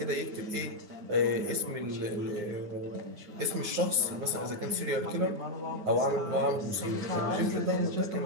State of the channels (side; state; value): left; late; 9.5 ms